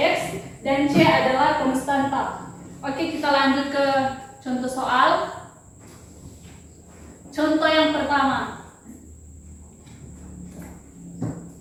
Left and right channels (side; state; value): both; identical; correlation 1.00